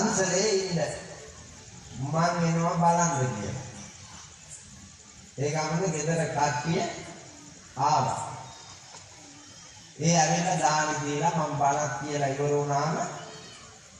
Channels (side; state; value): both; identical; correlation 1.00